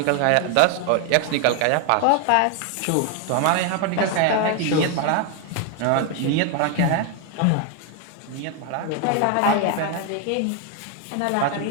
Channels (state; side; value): different; both; correlation 0.01